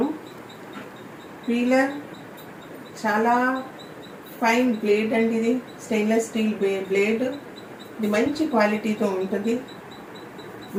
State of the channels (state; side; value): identical; both; correlation 1.00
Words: పీలర్ చాలా ఫైన్ బ్లేడ్ అండి. ఇది స్టెయిన్లెస్ స్టీల్ బ్లేడ్. ఇది మంచి క్వాలిటీతో ఉంటుంది.